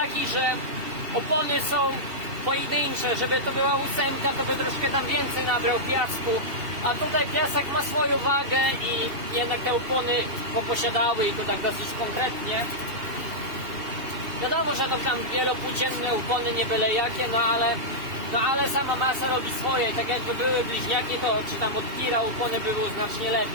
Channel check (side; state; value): left; late; 2.7 ms